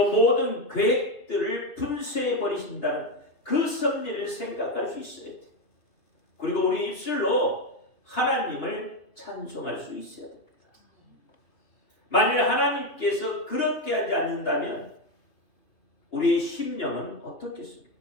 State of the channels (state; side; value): late; right; 2.9 ms